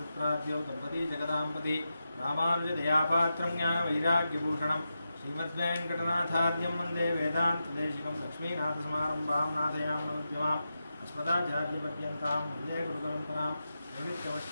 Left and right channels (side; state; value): both; inverted; correlation -0.88